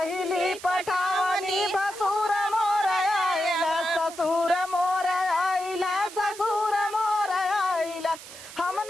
पठावनी भसुर मोर आइला ससुर मोर आइला ससुर मोर आइला हम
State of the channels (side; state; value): right; noise; hiss, 15 dB below the sound